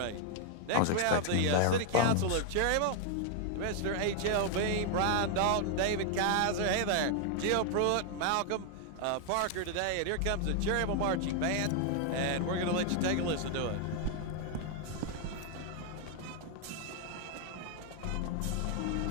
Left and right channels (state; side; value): different; both; correlation 0.00